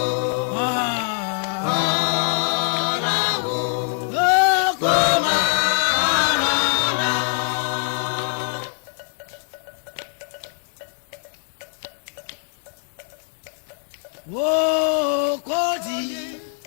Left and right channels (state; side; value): silent; right; 63 dB below the other